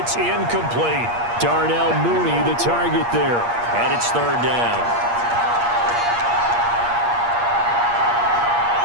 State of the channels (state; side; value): late; left; 8.5 ms